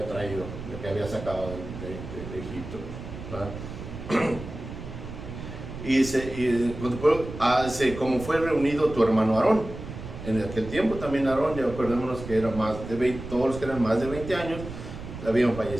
traído, el que había sacado de Egipto, ¿verdad? Y dice, como fue reunido tu hermano Aarón. En aquel tiempo también Aarón, ya acordémonos que era más de 20, todos los que eran más de 20 años habían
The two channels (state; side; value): noise; right; rumble, 10 dB below the sound